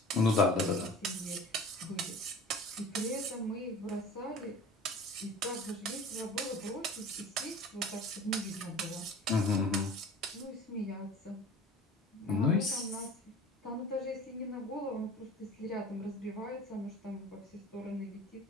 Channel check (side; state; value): both; normal; correlation 0.41